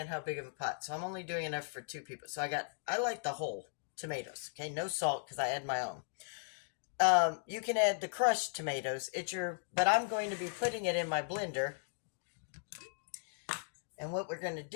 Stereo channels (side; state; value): right; silent; digital silence